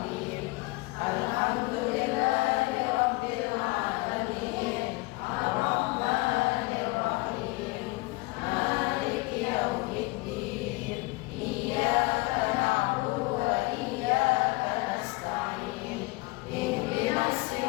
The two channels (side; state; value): right; quieter; 23.9 dB